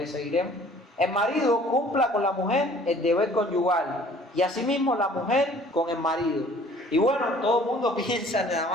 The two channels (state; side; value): normal; both; correlation 0.53